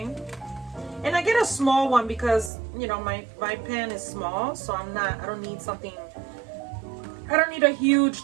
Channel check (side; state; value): left; drops out; at 2.5 s